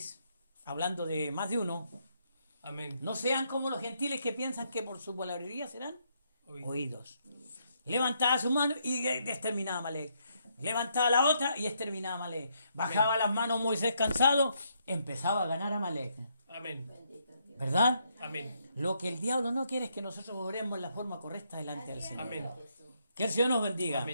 hablando de más de uno, Amén. no sean como los gentiles que piensan que por su palabrería serán Oídos. oídos. Levantaba su mano y exterminaba a Amalek. Levantaba la otra y exterminaba a Amalek. Bajaba las manos Moisés cansado, empezaba a ganar a Amalek. Amén. ¿Verdad? Amén. Lo que el diablo no quiere es que nosotros oremos en la forma correcta delante del Señor. Amén. Que el Señor nos bendiga.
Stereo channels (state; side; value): inverted; both; correlation -0.75